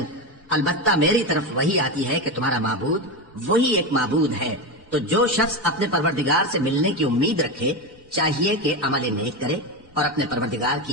البتہ میری طرف وہی آتی ہے کہ تمہارا معبود وہی ایک معبود ہے. تو جو شخص اپنے پروردگار سے ملنے کی امید رکھے چاہیے کہ عمل نیک کرے اور اپنے پروردگار کی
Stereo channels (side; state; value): both; normal; correlation 0.16